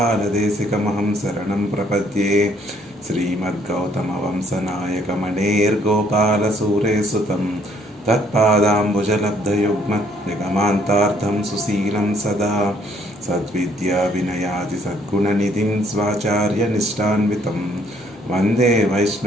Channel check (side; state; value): both; normal; correlation 0.65